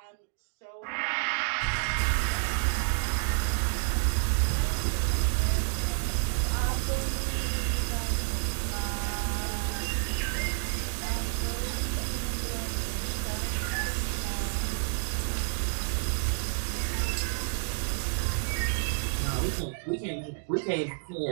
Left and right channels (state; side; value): silent; left; 58 dB below the other